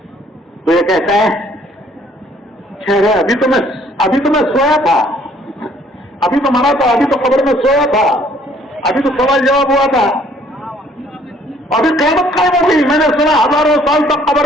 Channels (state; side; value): normal; both; correlation 0.60